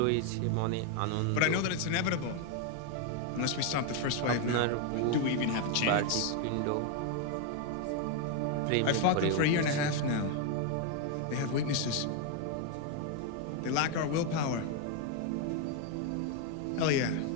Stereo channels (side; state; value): both; different; correlation 0.01